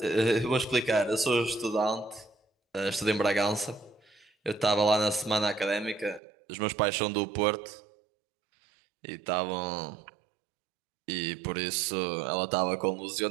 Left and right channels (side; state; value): left; drops out; at 6.2 s